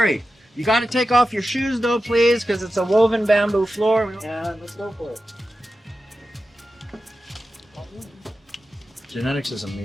You got to take off your shoes though, please, because it's a woven bamboo floor. And let's go for it. Genetics is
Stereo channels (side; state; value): both; normal; correlation 0.92